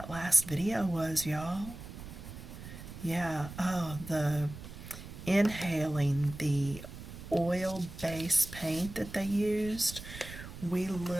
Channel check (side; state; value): right; noise; rumble, 12 dB below the sound